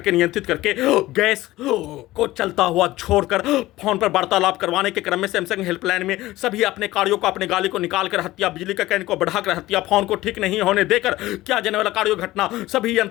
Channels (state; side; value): quieter; right; 17.1 dB